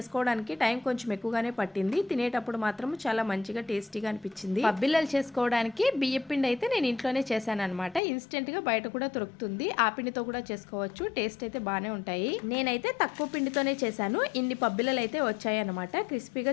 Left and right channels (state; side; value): drops out; right; at 8.0 s